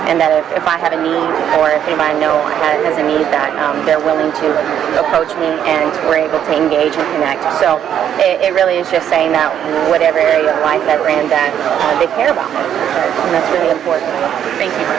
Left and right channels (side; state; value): left; quieter; 9.6 dB